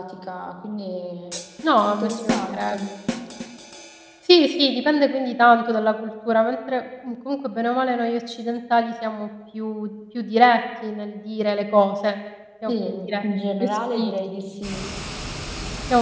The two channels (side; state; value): both; identical; correlation 1.00